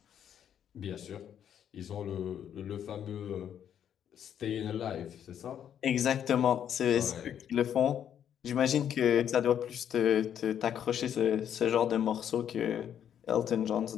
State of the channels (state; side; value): quieter; right; 9.3 dB